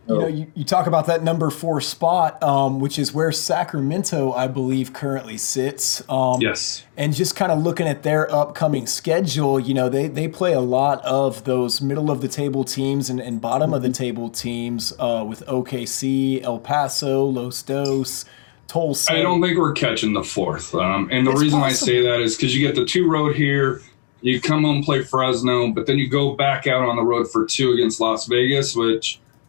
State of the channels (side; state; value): right; silent; digital silence